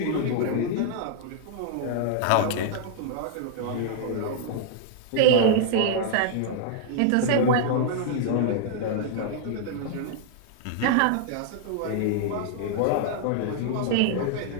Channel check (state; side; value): different; both; correlation 0.00